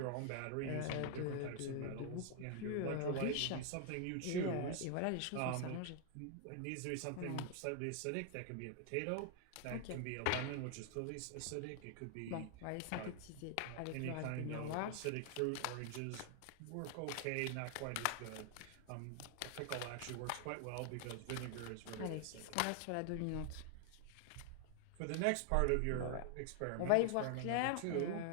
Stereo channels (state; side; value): different; both; correlation 0.00